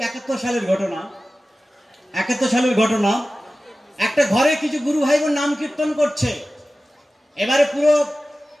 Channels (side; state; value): both; normal; correlation 0.95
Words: 71 সালের ঘটনা। 71 সালের ঘটনা, একটা ঘরে কিছু গুরু ভাই বোন নাম কীর্তন করছে। এবারে পুরো